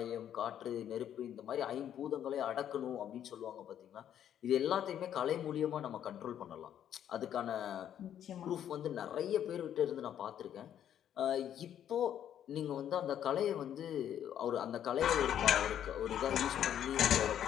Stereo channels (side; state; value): right; quieter; 10.1 dB